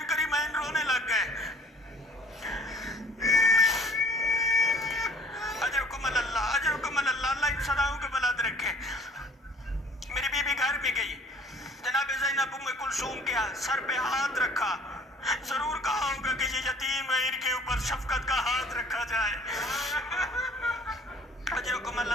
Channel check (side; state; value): both; normal; correlation 0.53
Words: करीमैन रोने लग गए। अजरकुम अल्लाह, अजरकुम अल्लाह, अल्लाह इन सदाओं को बुलंद रखे। मेरी बीबी घर में गई, जनाब ज़ैनब उम्मे कुलसूम के सर पे हाथ रखा। जरूर कहा होगा कि ये यतीम है, इनके ऊपर शफकत का हाथ रखा जाए। अजरकुम